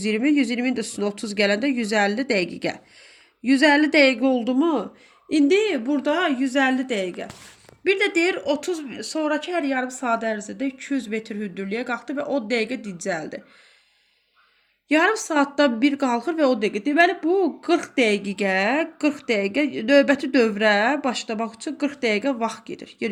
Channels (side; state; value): both; identical; correlation 1.00